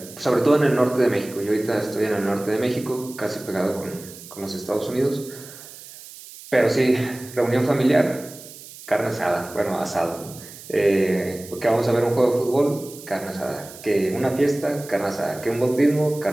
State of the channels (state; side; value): noise; right; hiss, 17 dB below the sound